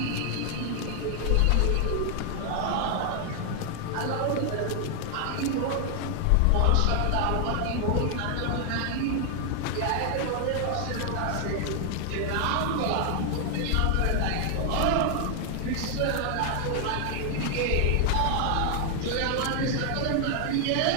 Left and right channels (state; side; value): different; both; correlation 0.00